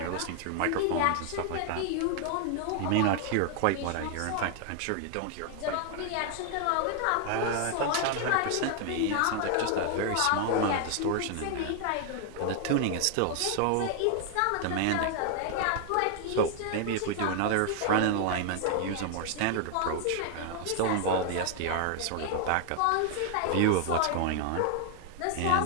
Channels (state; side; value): different; both; correlation 0.00